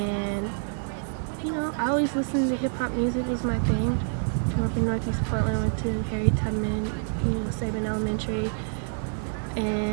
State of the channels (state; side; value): silent; left; 59 dB below the other